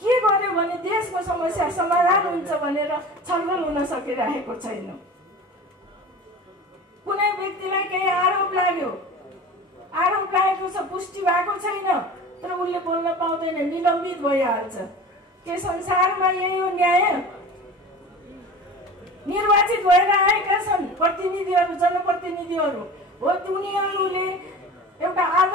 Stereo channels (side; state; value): both; normal; correlation 0.36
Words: के गर्यो भने देशको समस्या समाधान हुन्छ भनेर छलफल हुन सकिरहेको छैन। कुनै व्यक्तिलाई केही आरोप लाग्यो, आरोप लागेको छ, पुष्टि भएको छैन, तर उसले बोल्न पाउँदैन, निलम्बित भइहाल्छ। के संसारमा यही हो न्याय? निर्वाचित भएर आएका छन् प्रतिनिधिहरू, जनप्रतिनिधिहरू हो, उनीहरूले एउटा